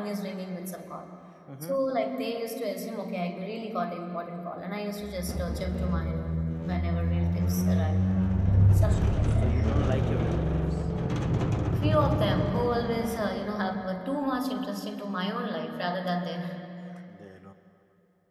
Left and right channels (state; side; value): identical; both; correlation 1.00